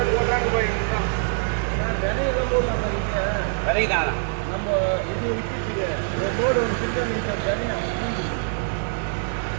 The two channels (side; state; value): left; silent; digital silence